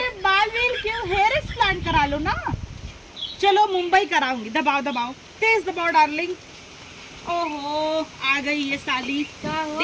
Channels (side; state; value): both; identical; correlation 1.00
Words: बाल व्हील क्यों, हेयर ट्रांसप्लांट करा लो ना। चलो मुंबई कराऊंगी। दबाओ दबाओ, तेज दबाओ डार्लिंग। ओहो आ गई ये साली,